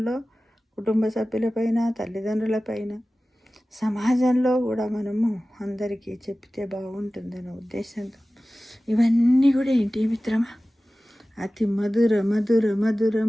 కుటుంబ సభ్యులపైన, తల్లిదండ్రులపైన, సమాజంలో కూడా మనము అందరికీ చెప్తే బాగుంటుందన్న ఉద్దేశంతో ఇవన్నీ కూడా ఏంటి మిత్రమా, అతి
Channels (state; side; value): normal; both; correlation 0.96